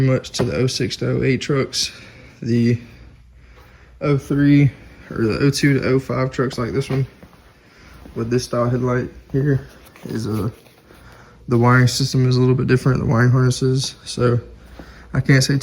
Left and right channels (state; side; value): identical; both; correlation 1.00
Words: much to the 06 to 08 trucks. The 03 or the 02 to 05 trucks like this one with this style headlight here is the wiring system is a little bit different, the wiring harnesses. So I can't say